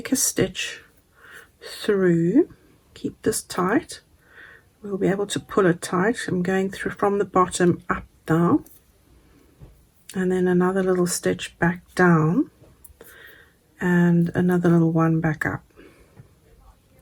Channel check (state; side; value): identical; both; correlation 1.00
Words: a stitch through. Keep this tight. We'll be able to pull it tight. I'm going through from the bottom up now, and then another little stitch back down, and another little one back up.